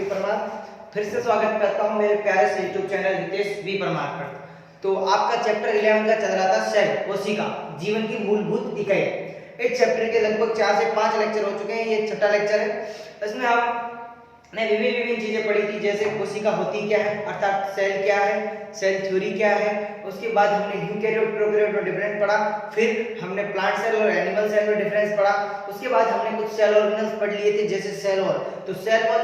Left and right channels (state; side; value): identical; both; correlation 1.00